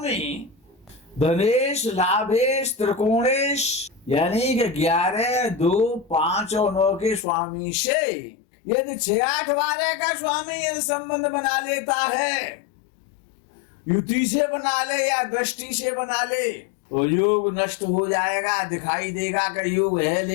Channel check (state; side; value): drops out; right; at 7.2 s